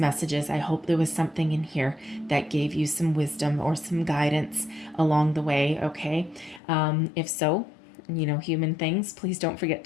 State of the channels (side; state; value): right; drops out; at 6.6 s